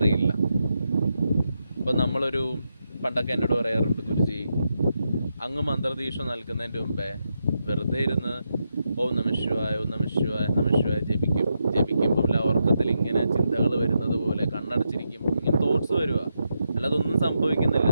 ഇപ്പോൾ പണ്ടൊക്കെ എന്നോട് പറയാറുണ്ട്, ഗുരുജി അങ്ങ് മന്ത്രദീക്ഷ നൽകുന്നതിൻ്റെ മുമ്പേ വെറുതെ ഇരുന്ന് ഓം നമഃശിവായ ഓം നമഃശിവായ നമഃശിവായ ജപിക്കുമ്പോൾ ഉറക്കത്തിൽ ഇങ്ങനെ ചിന്തകൾ വരുന്നത് പോലെ കണ്ണടച്ചിരിക്കുമ്പോൾ ഇങ്ങനെ തോട്ട്സ് വരിക, അല്ലാതെ ഒന്നും സംഭവിക്കുന്നില്ല.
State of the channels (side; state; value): both; inverted; correlation -0.84